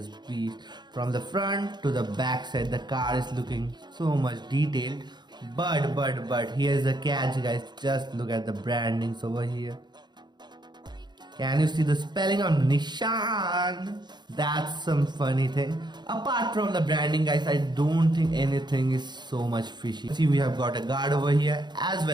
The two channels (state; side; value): late; left; 0.21 ms